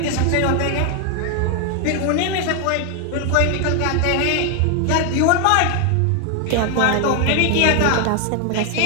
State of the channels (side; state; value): both; different; correlation 0.01